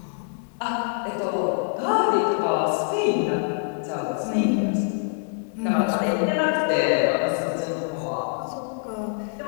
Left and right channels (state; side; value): silent; right; digital silence